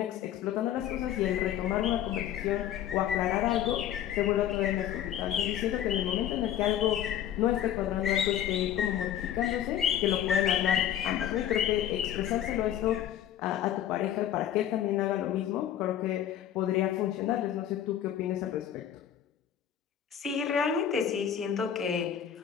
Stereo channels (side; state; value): right; quieter; 10.5 dB